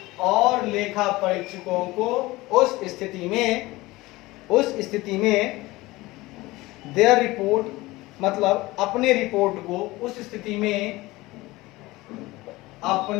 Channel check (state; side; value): quieter; right; 20.0 dB